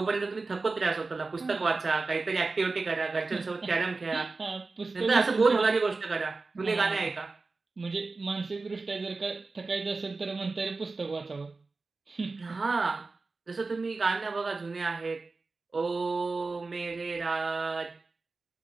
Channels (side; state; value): left; quieter; 3.8 dB